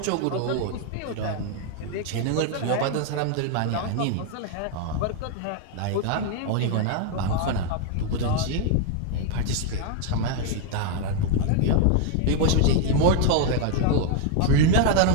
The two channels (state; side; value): different; both; correlation 0.00